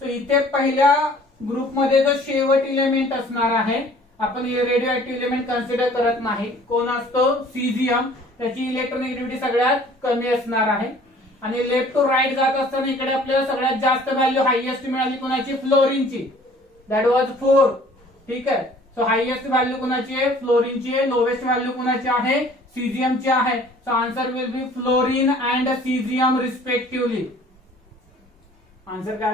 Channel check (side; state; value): both; normal; correlation 0.53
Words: So इथे पहिल्या ग्रुपमध्ये जो शेवट इलेमेंट असणार आहे, आपण रेडिओ ऍक्टिव्ह इलेमेंट कन्सिडर करत नाही, कोण असतो सीझियम, त्याची इलेक्ट्रोनेगेटिव्हिटी सगळ्यात कमी असणार आहे. आणि लेफ्ट टू राईट जात असताना इकडे आपल्याला सगळ्यात जास्त व्हॅल्यू हायएस्ट मिळाली कोणाची, फ्लोरीनची, दॅट वॉज 4. ठीक आहे. सो हायएस्ट व्हॅल्यू कोणाची आहे, फ्लोरीनची आहे. लोवेस्ट व्हॅल्यू कोणाची आहे, सीझियमची आहे. So answer will be fluorine and caesium respectively. Answer